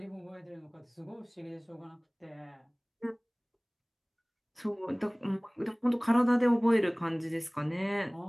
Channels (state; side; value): identical; both; correlation 1.00